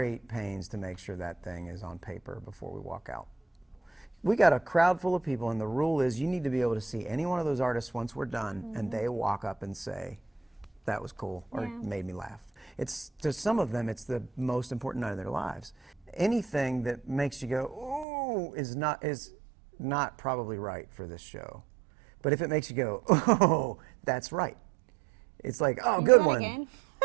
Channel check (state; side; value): drops out; left; at 18.1 s